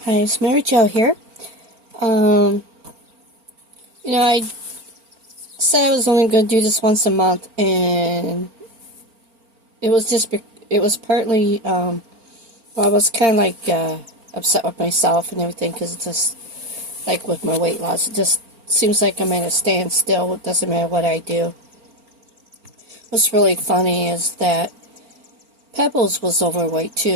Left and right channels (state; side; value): late; left; 4.4 ms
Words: Hi, it's Mary Jo here. Um, I said I was only going to do this once a month, and it was partly, well, I was kind of like upset with myself and everything because it's just like with my weight loss, it just seems like I'm at a standstill. It doesn't matter what I do. What's really funny is that Pebbles was overweight